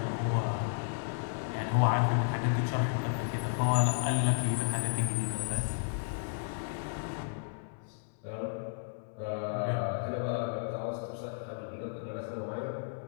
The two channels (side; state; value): right; silent; 55 dB below the other